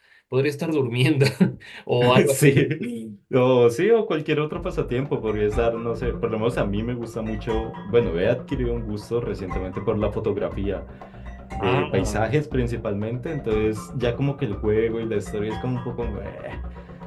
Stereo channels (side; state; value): both; identical; correlation 1.00